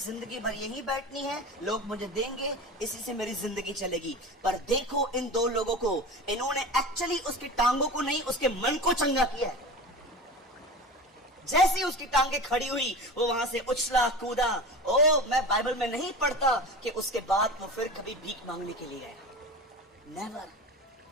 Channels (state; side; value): normal; both; correlation 0.31